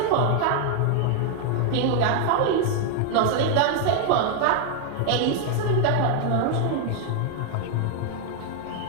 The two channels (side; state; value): both; different; correlation 0.00